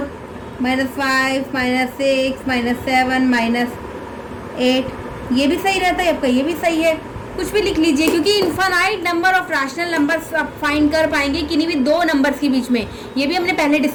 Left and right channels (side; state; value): both; identical; correlation 1.00